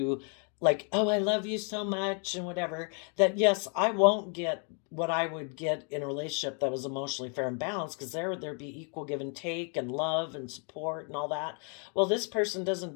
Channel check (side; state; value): right; quieter; 40.0 dB